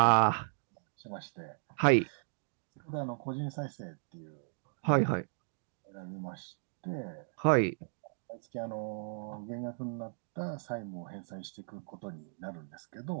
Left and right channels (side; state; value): left; silent; digital silence